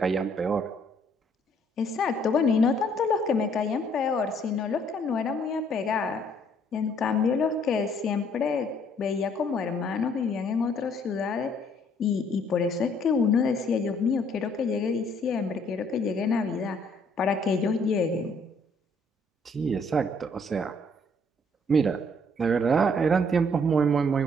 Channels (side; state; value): both; normal; correlation 0.64